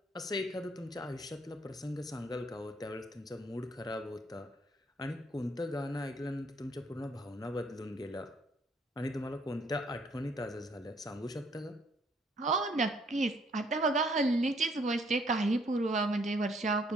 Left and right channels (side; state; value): both; normal; correlation 0.66